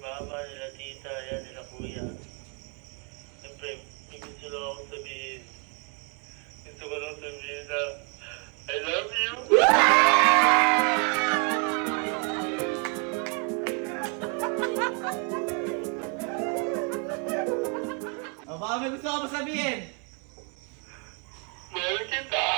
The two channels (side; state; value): left; quieter; 37.7 dB